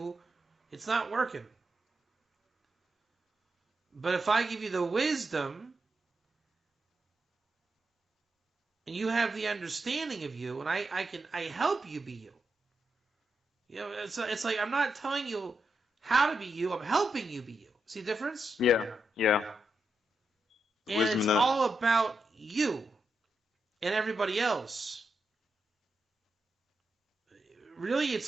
it's not working. But if I give you the wisdom and you have the understanding of you, and I help you be you. You know, it's like I'm not telling you how to be you. I'm helping you be you. See the difference? Yeah. Yeah. And Wisdom it's enough. all about you and everybody else. Really, it's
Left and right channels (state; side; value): normal; both; correlation 0.85